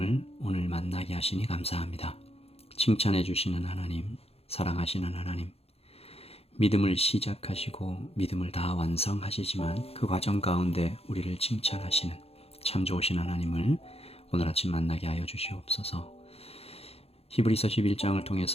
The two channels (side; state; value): right; late; 0.29 ms